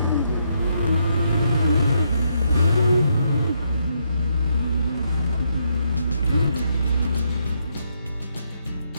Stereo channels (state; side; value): inverted; both; correlation -0.76